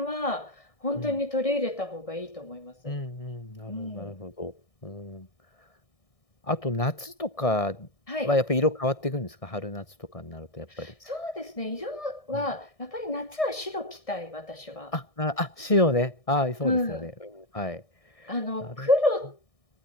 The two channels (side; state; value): right; late; 1.6 ms